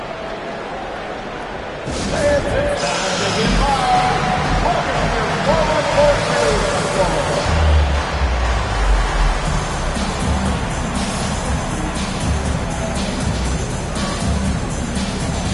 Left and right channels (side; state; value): both; identical; correlation 1.00